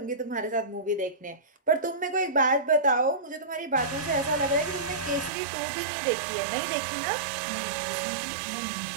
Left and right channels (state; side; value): drops out; left; at 5.3 s